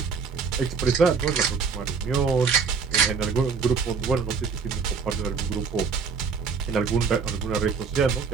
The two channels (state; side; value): quieter; left; 5.5 dB